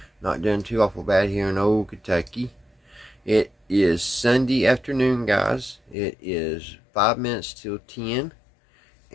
Not doing too awful bad here in old Kentucky. It is Sunday afternoon, guys. It is 5 minutes till 10.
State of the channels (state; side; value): drops out; right; at 6.0 s